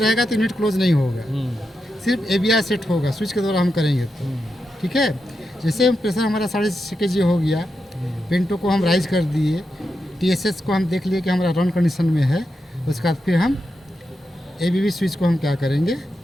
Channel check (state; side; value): normal; both; correlation 0.87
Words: तो यूनिट क्लोज नहीं होगा, सिर्फ AVR सेट होगा स्विच के द्वारा हम करेंगे तो, ठीक है। जैसे हम प्रेशर हमारा 6.5 kg हो गया, पेंटो को हम राइज कर दिए, TSS को हम देख लिए कि हमारा रन कंडीशन में है। उसके बाद फिर हम ABB स्विच को हम क्या करेंगे,